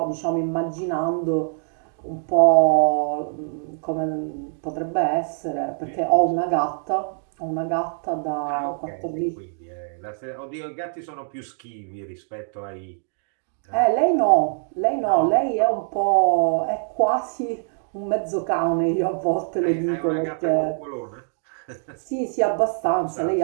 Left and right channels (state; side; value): silent; left; digital silence